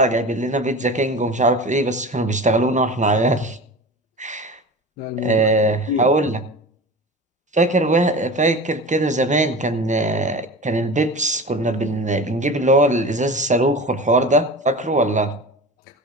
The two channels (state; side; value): normal; both; correlation 0.33